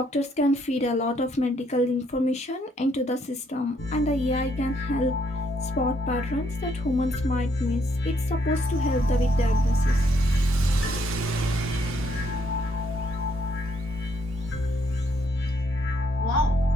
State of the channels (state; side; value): normal; both; correlation 0.71